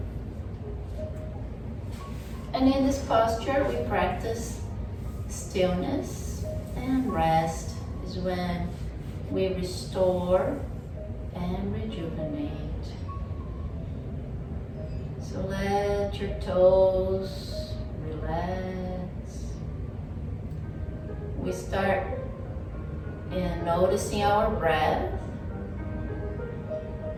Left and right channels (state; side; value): identical; both; correlation 1.00